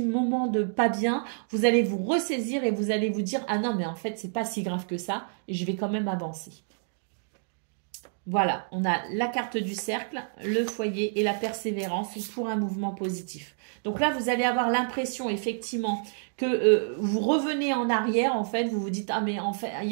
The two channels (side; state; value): left; silent; digital silence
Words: de pas bien. Vous allez vous ressaisir et vous allez vous dire « Ah non, mais en fait, c'est pas si grave que ça et je vais quand même avancer. » Voilà, on a la carte du cercle, le foyer et la persévérance pour un mouvement positif. Donc là, vous allez avoir l'impression effectivement que vous revenez en arrière, en fait, vous vous dites, ah mais en fait,